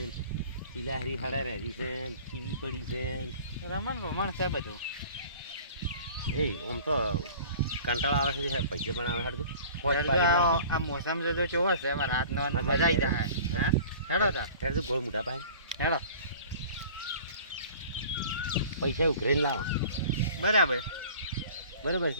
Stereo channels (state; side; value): inverted; both; correlation -0.45